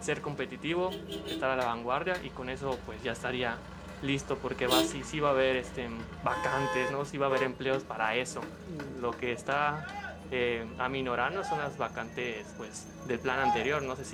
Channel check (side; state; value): both; identical; correlation 1.00